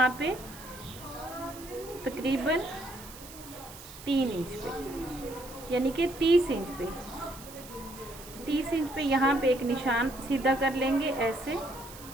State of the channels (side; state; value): right; noise; hiss, 16 dB below the sound